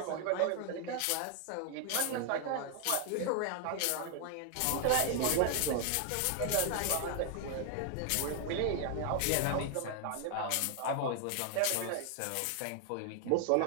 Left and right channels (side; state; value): both; different; correlation 0.00